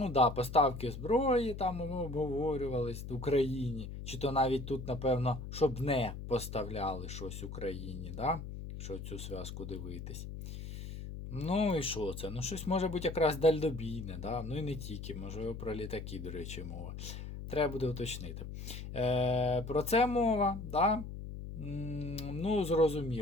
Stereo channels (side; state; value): left; noise; hum, 8 dB below the sound